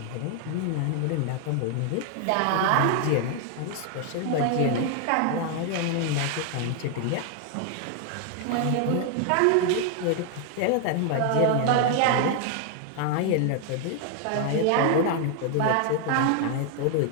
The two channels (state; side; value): different; both; correlation 0.00